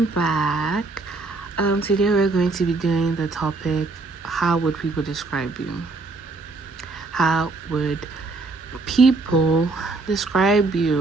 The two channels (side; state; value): left; quieter; 3.6 dB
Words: back. Today we're going to be doing the topic, how would people describe you? How would people describe